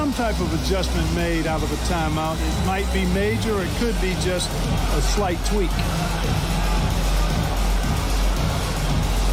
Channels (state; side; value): identical; both; correlation 1.00